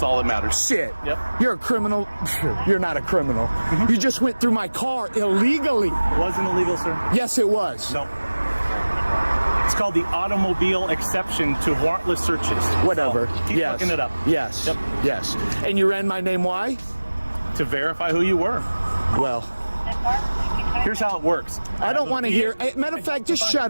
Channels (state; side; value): inverted; both; correlation -1.00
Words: all that matters. Shit. Yep. You're a criminal. You're not a criminal. You just went through my car illegally. It wasn't illegal, sir. Yes, it was. No. It's called the automobile exception to warrantless searches. Whatever. So keep Yes. looking it up. Yes. Yep. Yes. And you ran my name. Why? To verify who you were. Well, Here's how it works. I don't want to hear. Hey, matter of fact, just